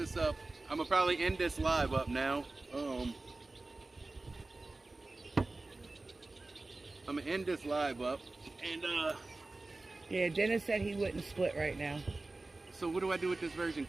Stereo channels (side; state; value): left; quieter; 3.2 dB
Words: up. I'm gonna probably end this live up now. I'm gonna end this live up, and yeah, Dennis said he wouldn't split right now. So what do I do with this virgin